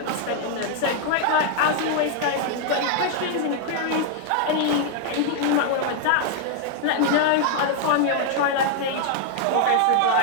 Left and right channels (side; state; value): both; different; correlation 0.00